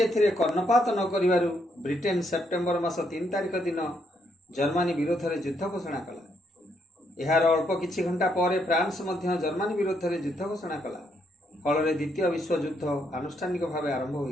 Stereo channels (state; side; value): normal; both; correlation 0.75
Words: ଏଥିରେ କର୍ଣ୍ଣପାତ ନ କରିବାରୁ ବ୍ରିଟେନ ସେପ୍ଟେମ୍ବର ମାସ 3 ତାରିଖ ଦିନ ଜର୍ମାନୀ ବିରୋଧରେ ଯୁଦ୍ଧ ଘୋଷଣା କଲା। ଏହାର ଅଳ୍ପ କିଛି ଘଣ୍ଟା ପରେ ଫ୍ରାନ୍ସ ମଧ୍ୟ ଜର୍ମାନୀ ବିରୋଧରେ ଯୁଦ୍ଧ ଘୋଷଣା କଲା। ଫଳରେ ଦ୍ୱିତୀୟ ବିଶ୍ୱଯୁଦ୍ଧ ଆନୁଷ୍ଠାନିକ ଭାବେ ଆରମ୍ଭ